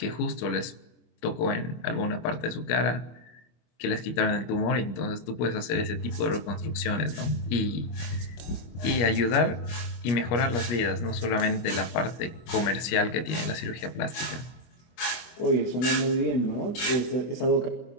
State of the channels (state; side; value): late; right; 24 ms